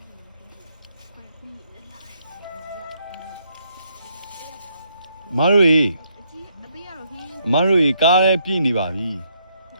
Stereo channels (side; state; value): both; inverted; correlation -0.74